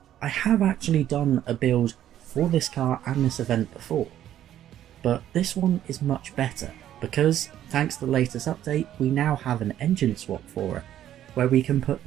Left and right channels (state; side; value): quieter; left; 11.5 dB